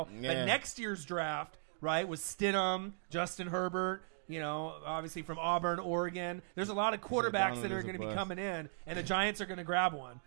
Yeah. But next year's draft, right, was Stidham, Justin Herbert. Obviously from Auburn, Oregon. There's a lot of quarterbacks that are going to be coming in, and the Giants are going to grab one.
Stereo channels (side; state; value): left; silent; digital silence